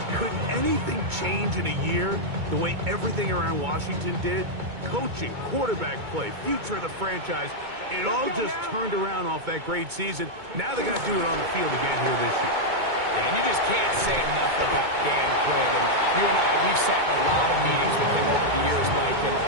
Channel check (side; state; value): left; late; 2.2 ms